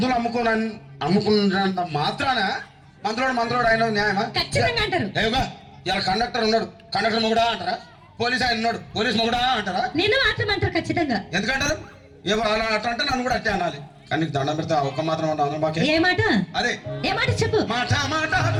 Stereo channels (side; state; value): both; identical; correlation 1.00